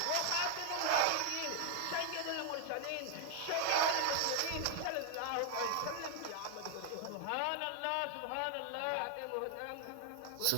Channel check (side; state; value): both; different; correlation 0.00